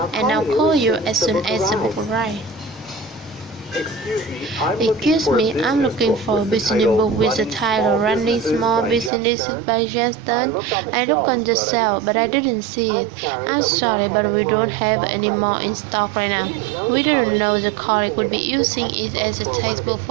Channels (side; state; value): left; drops out; at 9.1 s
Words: and I'll call you as soon as the book arrives. Excuse me, I'm looking for a business book with the title Running Small Businesses by test9. I looked on the shelf, but I didn't see it. I'm sorry, but we don't have any more in stock right now. We didn't know the colleague would be using it as a textbook